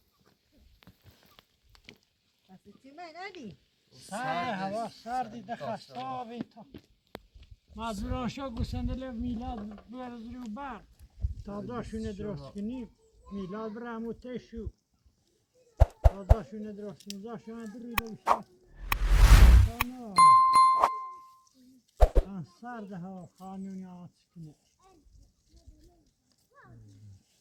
بس چی من ندی سرد هوا سردی دخستابی تا مجبوران شو گوسنده میلاد برز رو بر تازه‌شونه درست کنیم میلاد برم و تشو تازه‌شونه درست کنیم تازه‌شونه دریده بشه سرد هوا خانونی آت کنه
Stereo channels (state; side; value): identical; both; correlation 1.00